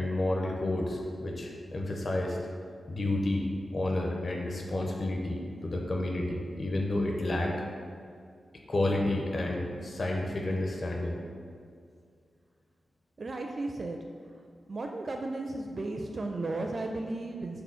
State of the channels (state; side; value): normal; both; correlation 0.92